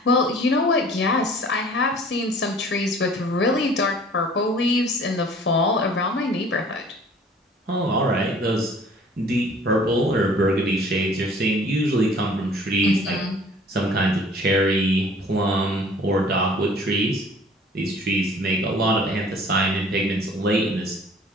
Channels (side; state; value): both; normal; correlation 0.51